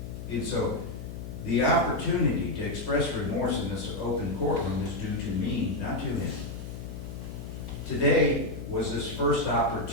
And so the opportunity to express remorse in this open courtroom is due to me, not to him. Today was his first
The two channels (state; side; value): noise; left; hum, 9 dB below the sound